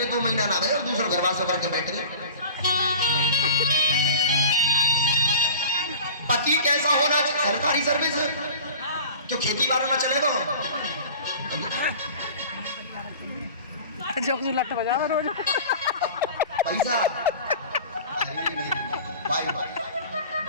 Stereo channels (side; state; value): both; inverted; correlation -0.39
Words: 2 महीना ना रहे और दूसरा घर वास करके बैठ गए। पति कैसा होना चाहिए? सरकारी सर्विस क्यों खेती बाड़ी ना चलेगा? जोक जुलट बजा रोज पैसा बाय बाय